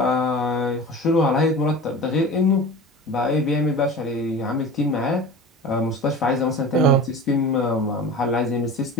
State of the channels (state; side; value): normal; both; correlation 0.35